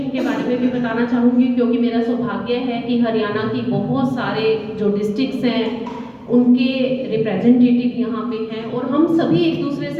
के बारे में भी बताना चाहूँगी, क्योंकि मेरा सौभाग्य है कि हरियाणा की बहुत सारे जो डिस्ट्रिक्ट्स हैं उनके रिप्रेजेंटेटिव यहाँ पे हैं, और हम सभी एक दूसरे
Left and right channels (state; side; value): identical; both; correlation 1.00